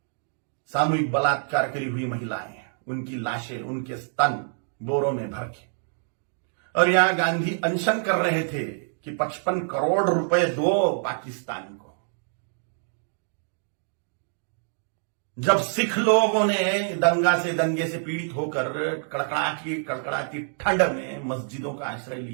सामूहिक बलात्कार करी हुई महिलाएं, उनकी लाशें, उनके स्तन बोरों में भर के। और यहां गांधी अनशन कर रहे थे कि 55 करोड़ रुपए दो पाकिस्तान को। जब सिख लोगों ने दंगे से पीड़ित होकर कड़कड़ाती ठंड में मस्जिदों का आश्रय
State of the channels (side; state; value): left; silent; digital silence